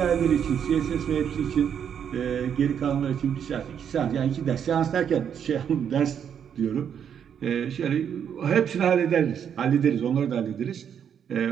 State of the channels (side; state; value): left; quieter; 8.3 dB